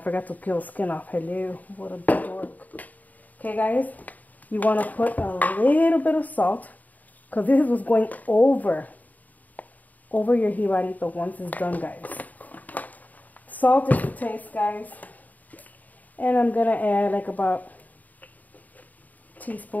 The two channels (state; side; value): late; right; 0.078 ms